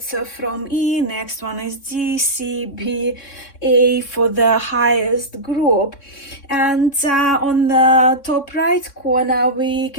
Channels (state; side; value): late; right; 3.6 ms